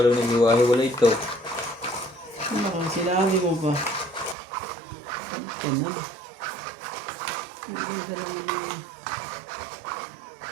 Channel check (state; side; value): drops out; left; at 4.4 s